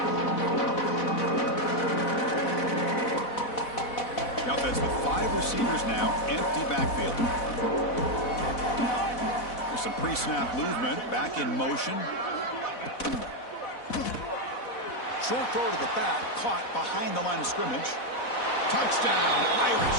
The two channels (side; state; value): right; late; 4.1 ms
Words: The offense with 5 receivers now, empty backfield. There's some pre-snap movement, back in motion. Short throw to the back, caught behind the line of scrimmage. Touchdown,